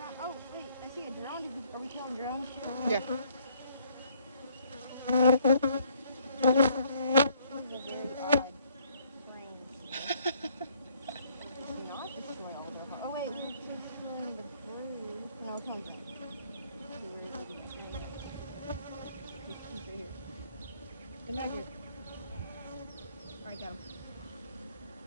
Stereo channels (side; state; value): both; inverted; correlation -0.64